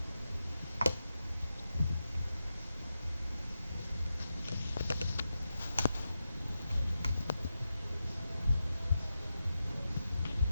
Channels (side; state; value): both; inverted; correlation -0.89